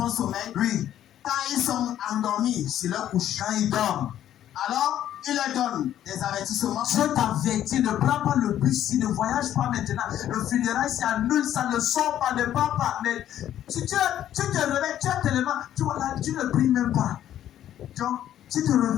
sommeil, Oui. quand ils sont endormis sur leur couche, Quand il dort, alors il leur donne des avertissements. Dieu t'avertit, ne prends pas le bus, ne voyage pas maintenant. Le funérail s'annule, ça ne sort pas, ne part pas. Mais si tu te réveilles, tu as tellement, tu vois là, tu ne pries même pas. Donc, tu te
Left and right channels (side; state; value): right; quieter; 11.5 dB